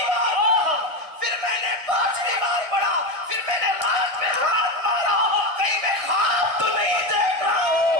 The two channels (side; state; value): left; late; 1.6 ms